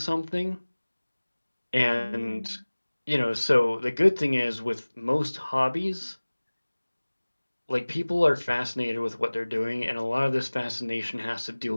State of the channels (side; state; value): both; inverted; correlation -1.00